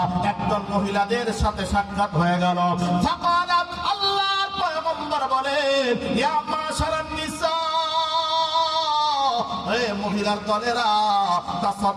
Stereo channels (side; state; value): both; identical; correlation 1.00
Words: একদল মহিলাদের সাথে সাক্ষাৎ হয়ে গেল। ফাকালাত, আল্লাহর পয়গম্বর বলেন ইয়া মাশারান নিসা, হে মহিলার দলেরা,